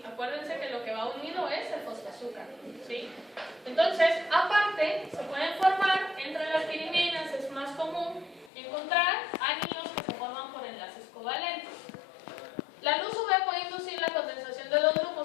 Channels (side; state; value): right; drops out; at 8.5 s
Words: Acuérdense que lo que va unido es el fosfoazúcar, ¿sí? Entonces, aparte, se pueden formar entre las piriminas, es más común encontrar anillos que se forman por enlaces covalentes. La luz UV puede inducir la condensación de dos